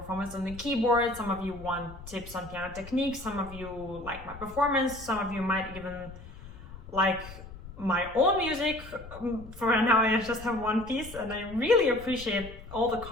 on the keyboard, some of you want tips on piano technique, some of you like my performance, some of you might even like my own music. For now I just have one piece, and I really appreciate all the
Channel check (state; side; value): noise; left; rumble, 15 dB below the sound